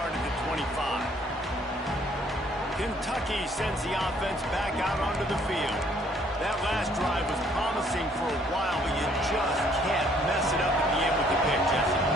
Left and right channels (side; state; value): both; normal; correlation 0.62